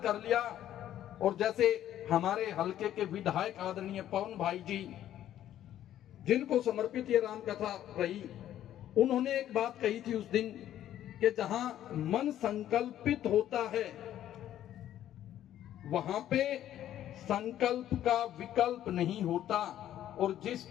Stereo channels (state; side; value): quieter; right; 11.8 dB